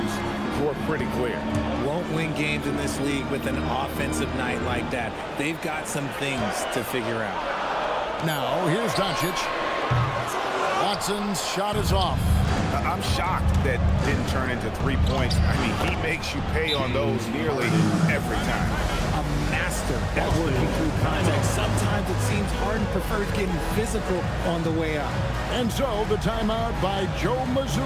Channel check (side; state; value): both; identical; correlation 1.00